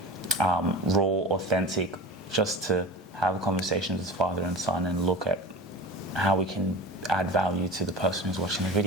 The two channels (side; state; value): both; normal; correlation 0.32